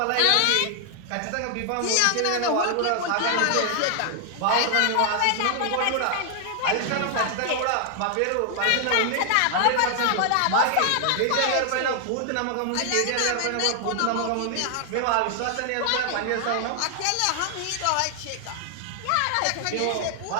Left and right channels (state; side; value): different; both; correlation 0.00